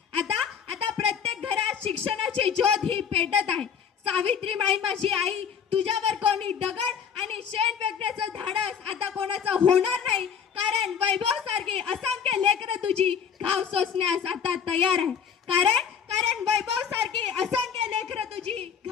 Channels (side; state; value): right; quieter; 7.4 dB